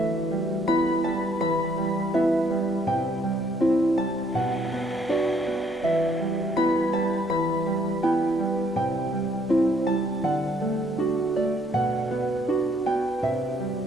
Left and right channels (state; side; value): normal; both; correlation 0.67